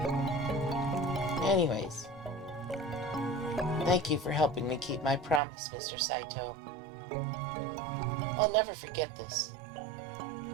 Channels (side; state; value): left; drops out; at 5.4 s